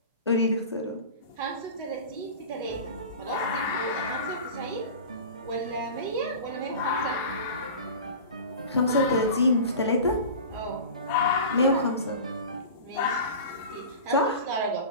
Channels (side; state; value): both; inverted; correlation -0.34